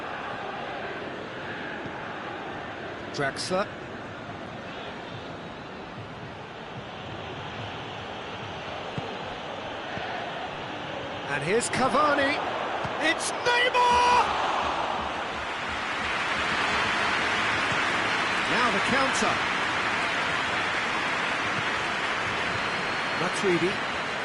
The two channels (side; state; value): both; identical; correlation 1.00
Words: Drexler. And here's Cavani. It's Neymar! Now the counter. Matuidi.